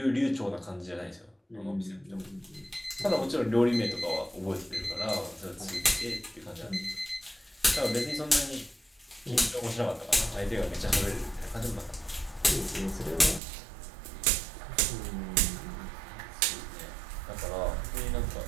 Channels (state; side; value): drops out; left; at 13.4 s